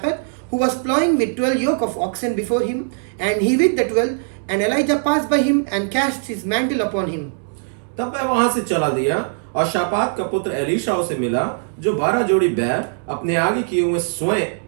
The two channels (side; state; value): left; silent; digital silence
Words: who was plowing with 12 yoke of oxen before him, and he with the 12. And Elijah passed by him and cast his mantle upon him. तब वह वहां से चला दिया और शापात का पुत्र Elisha उसे मिला, जो 12 जोड़ी बैल अपने आगे किए हुए